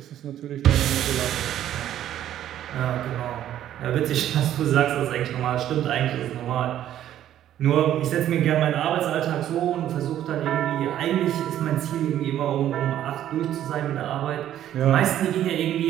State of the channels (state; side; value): quieter; left; 11.7 dB